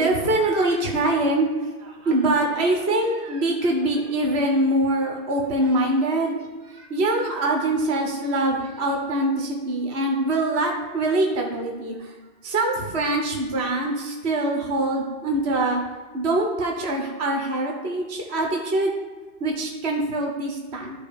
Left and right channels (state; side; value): late; left; 2.6 ms